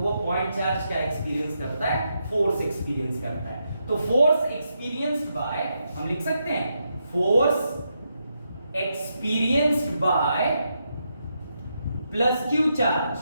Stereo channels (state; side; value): inverted; both; correlation -0.83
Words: पॉइंट चार्ज क्या एक्सपीरियंस करता है, फोर्स एक्सपीरियंस करता है। तो फोर्स एक्सपीरियंस्ड बाय, हम लिख सकते हैं force experienced by plus Q